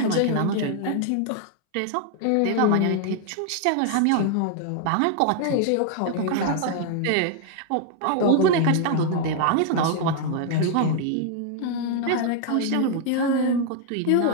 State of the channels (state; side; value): different; both; correlation 0.00